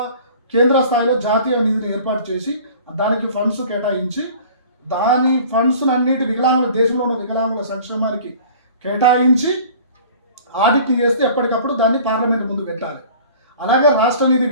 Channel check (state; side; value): inverted; both; correlation -0.46